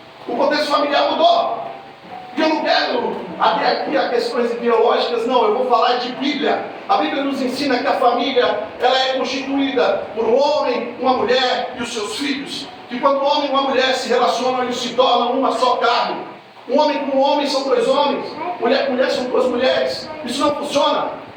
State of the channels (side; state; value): both; identical; correlation 1.00